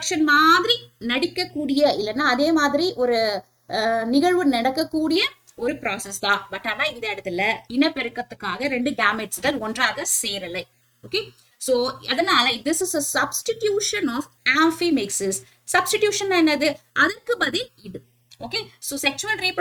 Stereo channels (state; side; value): identical; both; correlation 1.00